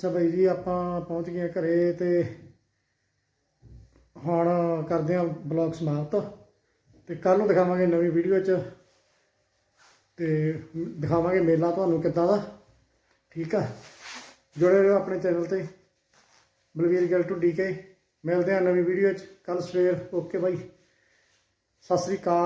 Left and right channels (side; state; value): both; identical; correlation 1.00